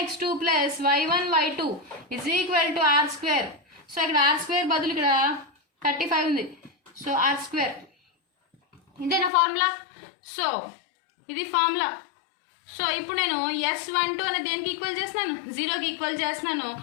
x2 plus y1 y2 is equal to r². So ఇక్కడ ఆర్ స్క్వేర్ బదులు ఇక్కడ 35 ఉంది. సో ఆర్ స్క్వేర్ ఇదేనా ఫార్ములా. సో ఇది ఫార్ములా. సో ఇప్పుడు నేను S12 అనేది దేనికి ఈక్వల్ చేస్తున్నాను, 0కి ఈక్వల్ చేస్తున్నాను.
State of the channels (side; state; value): right; drops out; at 9.3 s